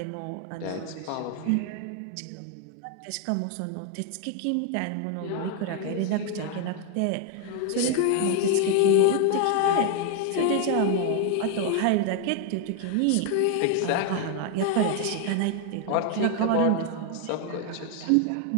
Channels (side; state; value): both; different; correlation 0.01